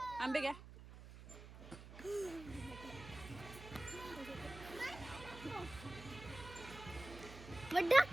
आंबे घ्या. मग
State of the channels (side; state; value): right; noise; hum, 15 dB below the sound